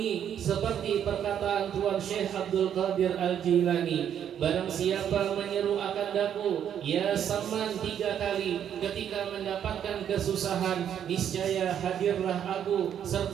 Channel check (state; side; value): quieter; left; 9.3 dB